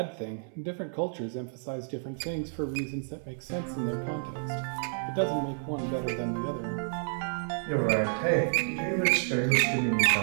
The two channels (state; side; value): silent; left; 58 dB below the other